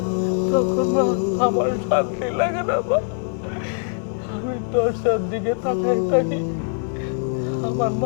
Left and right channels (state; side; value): silent; right; 57 dB below the other